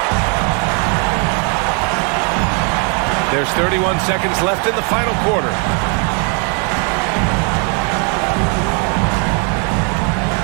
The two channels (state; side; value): quieter; left; 38.4 dB